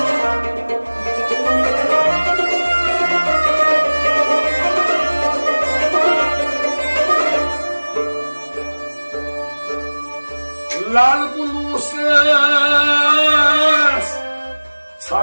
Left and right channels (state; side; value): inverted; both; correlation -1.00